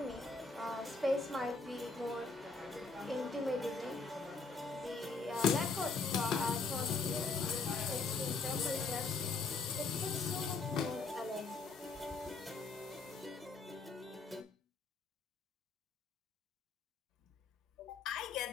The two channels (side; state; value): right; quieter; 4.1 dB